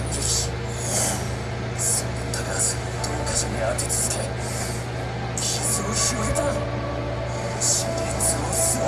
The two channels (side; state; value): both; identical; correlation 1.00